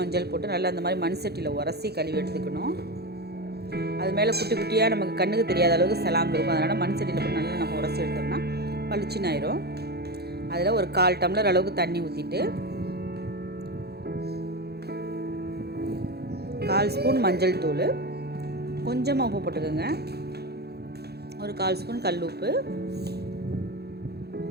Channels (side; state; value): left; late; 0.47 ms